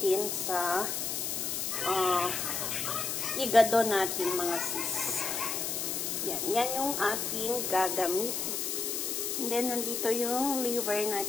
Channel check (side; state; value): left; noise; hiss, 1 dB below the sound